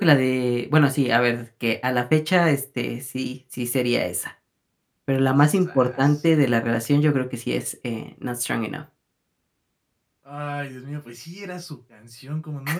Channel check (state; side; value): identical; both; correlation 1.00